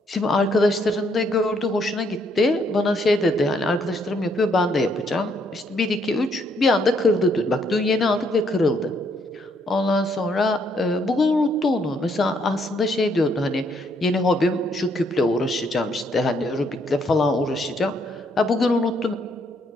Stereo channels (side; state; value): both; normal; correlation 0.71